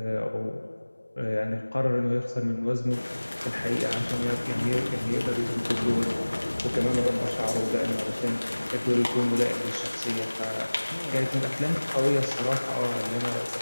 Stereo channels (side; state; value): both; inverted; correlation -1.00